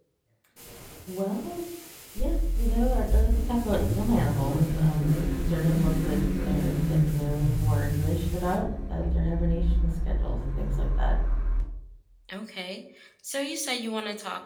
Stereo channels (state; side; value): identical; both; correlation 1.00